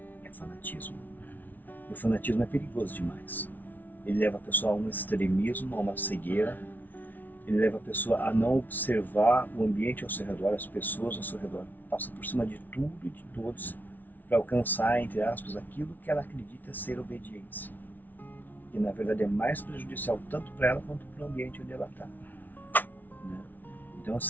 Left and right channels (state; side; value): late; right; 0.083 ms